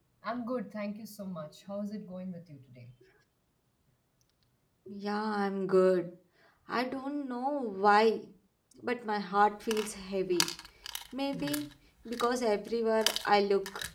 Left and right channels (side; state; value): both; identical; correlation 1.00